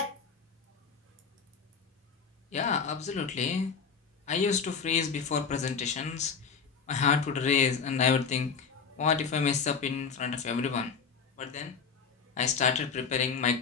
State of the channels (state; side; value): quieter; right; 5.9 dB